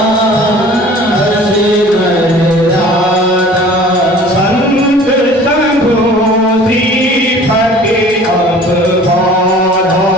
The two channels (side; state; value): both; normal; correlation 0.47